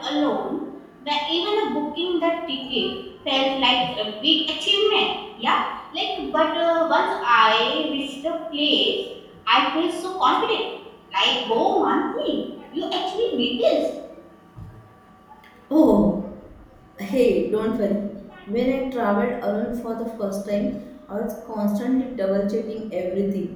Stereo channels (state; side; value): identical; both; correlation 1.00